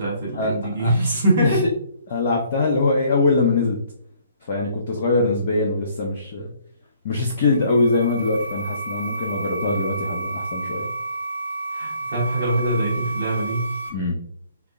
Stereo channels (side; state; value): both; inverted; correlation -0.62